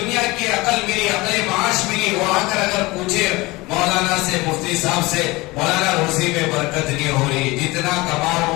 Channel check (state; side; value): quieter; right; 22.2 dB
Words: کی عقل ملی، عقل معاش ملی، وہ آ کر اگر پوچھے مولانا سے، مفتی صاحب سے، مولانا روزی میں برکت نہیں ہو رہی، جتنا کما